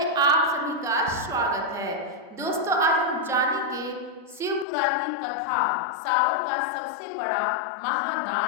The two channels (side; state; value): right; drops out; at 4.7 s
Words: आप सभी का स्वागत है। दोस्तों, आज हम जानेंगे शिव पुराण की कथा, सावन का सबसे बड़ा